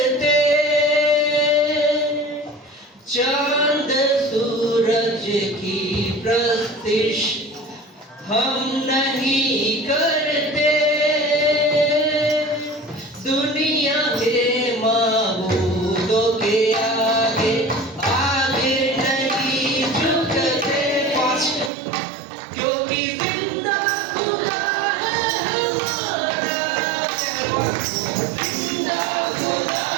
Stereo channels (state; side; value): drops out; left; at 21.7 s